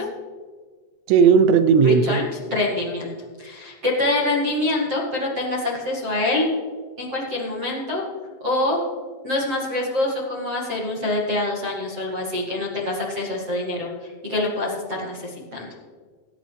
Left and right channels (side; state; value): left; late; 7.6 ms